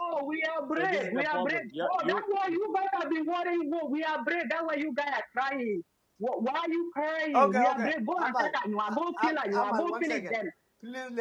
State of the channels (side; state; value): both; identical; correlation 1.00